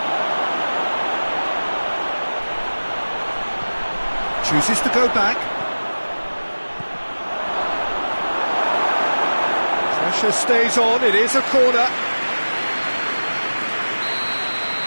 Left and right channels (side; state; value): both; inverted; correlation -1.00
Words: Chooses to go back. Pressure stays on, it is a corner.